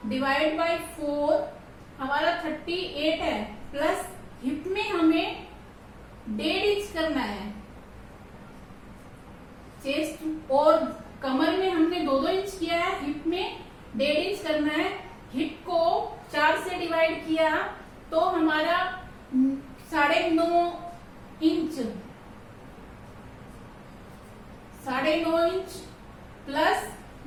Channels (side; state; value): both; identical; correlation 1.00